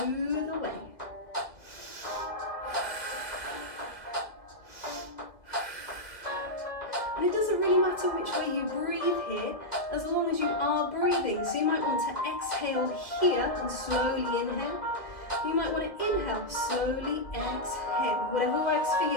away. matter which way you breathe here, as long as you are breathing. So you might want to exhale here and slowly inhale. You might want to inhale, slowly exhale, whatever works for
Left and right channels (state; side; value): late; right; 2.2 ms